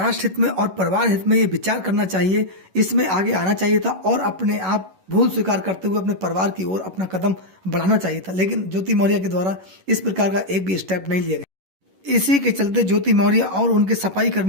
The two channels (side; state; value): left; late; 11 ms